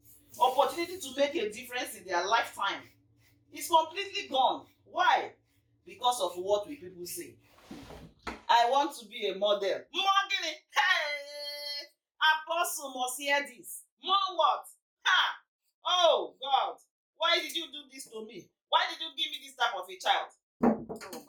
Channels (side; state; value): both; identical; correlation 1.00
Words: Opportunity to make a difference in their lifetime is completely gone. Why? Because of what we people say. I want to be a model. Morgan, hey! Apostle must hear this. More what? Ha! Oh God! Why did you do this to me? Why did you give me this type of a child? Oh